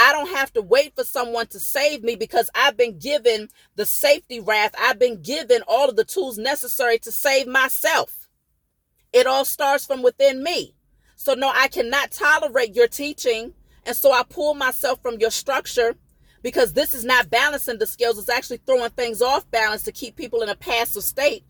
don't have to wait for someone to save me, because I've been given the safety raft. I've been given all of the tools necessary to save myself. It all starts from within me. So no, I cannot tolerate your teaching. And so I pull myself from your structure, because this is not balancing the scales. It's actually throwing things off balance to keep people in a passive state.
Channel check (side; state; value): both; identical; correlation 1.00